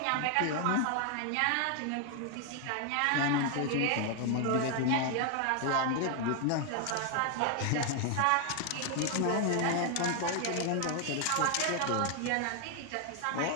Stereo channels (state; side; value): different; both; correlation 0.00